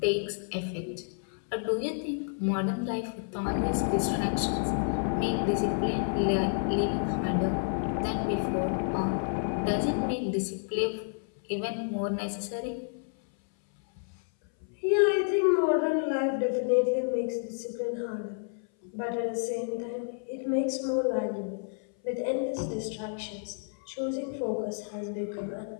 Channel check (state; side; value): silent; right; 58 dB below the other